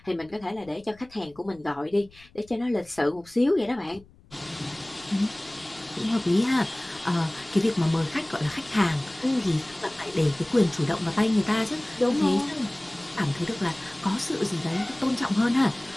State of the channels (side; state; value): left; noise; rumble, 26 dB below the sound